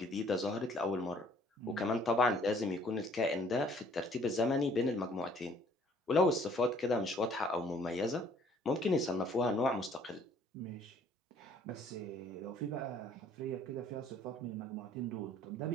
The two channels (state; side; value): normal; both; correlation 0.58